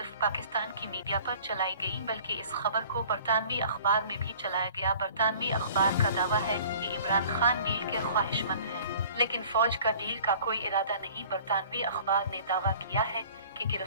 पाकिस्तान की मीडिया पर चलाई गईं बल्कि इस खबर को बरतानवी अखबार में भी चलाया गया। बरतानवी अखबार का दावा है कि इमरान खान डील के ख्वाहिशमंद हैं, लेकिन फौज का डील का कोई इरादा नहीं। बरतानवी अखबार ने दावा किया है कि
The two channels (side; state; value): both; inverted; correlation -0.48